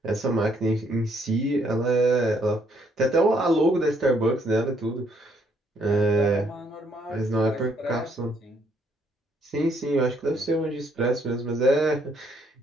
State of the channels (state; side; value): normal; both; correlation 0.69